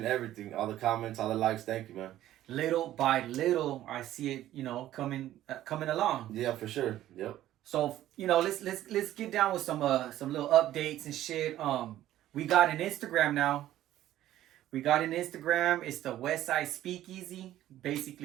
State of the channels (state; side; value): quieter; left; 13.4 dB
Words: everything, all the comments, all the likes. Thank you, man. Little by little, I see it, coming along. Yeah, for sure. Yep. So, let's get down with some little updates and shit. We got an Instagram now. It's the Westside Speakeasy.